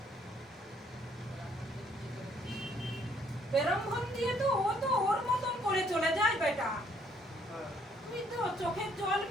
বেরম্ভন দিয়ে তো ও তো ওর মতন করে চলে যায় বেটা। তুই তো চোখের জল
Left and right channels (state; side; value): normal; both; correlation 0.66